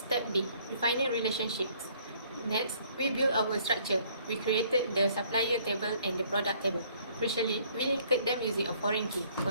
B. Defining relationships. Next, we build our structure. We created the supplier table and the product table. Crucially, we linked them using a foreign key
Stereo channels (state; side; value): inverted; both; correlation -0.61